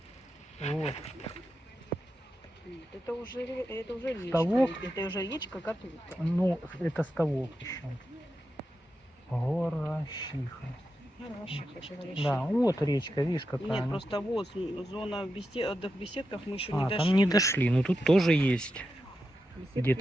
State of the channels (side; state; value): both; normal; correlation 0.88